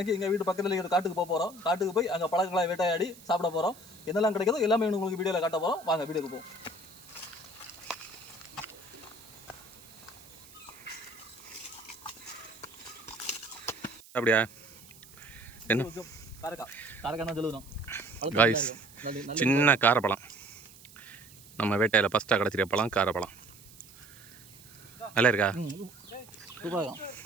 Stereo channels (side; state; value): right; noise; hiss, 21 dB below the sound